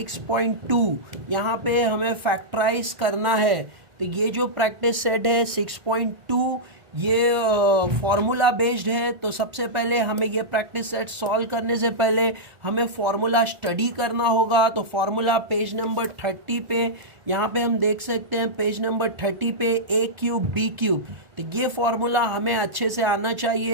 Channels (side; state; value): left; late; 1.4 ms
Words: यहाँ पे हमें फैक्टराइज करना है। तो ये जो प्रैक्टिस सेट है 6.2 ये फॉर्मूला बेस्ड है। तो सबसे पहले हमें ये प्रैक्टिस सेट सॉल्व करने से पहले हमें फॉर्मूला स्टडी करना होगा। तो फॉर्मूला पेज नंबर 30 पे यहाँ पे हम देख सकते हैं। पेज नंबर 30 पे a क्यूब b क्यूब। तो ये फॉर्मूला हमें अच्छे से आना